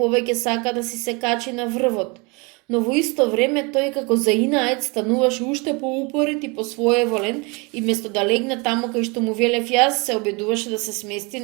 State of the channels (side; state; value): left; quieter; 29.1 dB